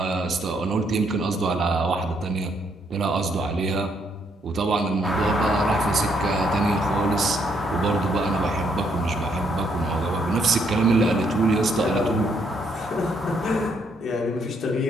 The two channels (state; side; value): normal; both; correlation 0.72